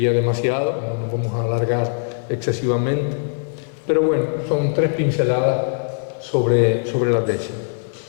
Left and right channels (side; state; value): right; silent; 65 dB below the other